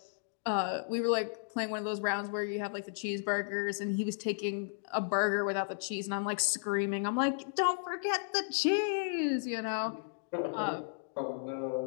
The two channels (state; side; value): silent; right; digital silence